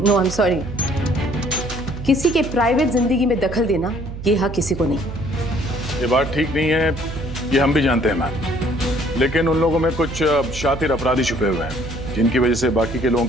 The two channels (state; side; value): noise; right; hum, 9 dB below the sound